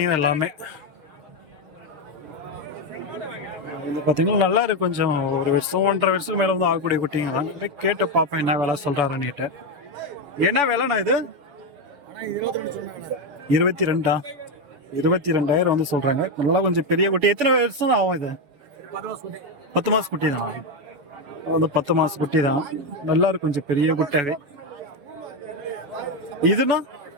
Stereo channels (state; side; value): late; left; 7.0 ms